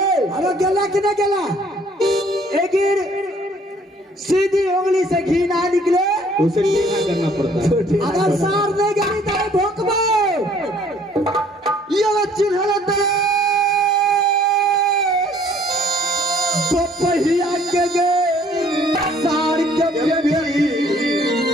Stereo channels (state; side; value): normal; both; correlation 0.59